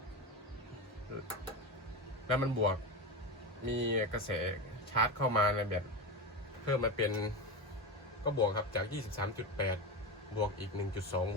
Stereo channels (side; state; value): both; normal; correlation 0.18